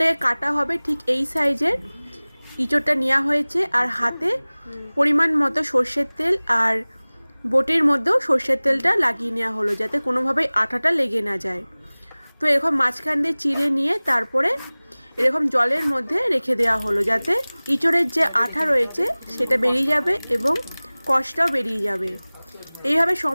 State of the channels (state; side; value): inverted; both; correlation -1.00